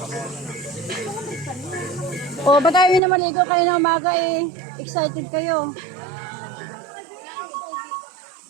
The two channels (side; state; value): left; drops out; at 3.0 s